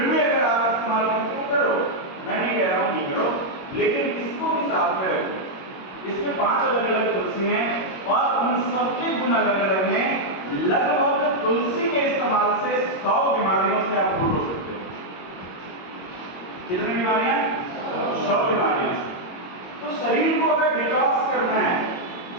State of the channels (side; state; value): right; late; 22 ms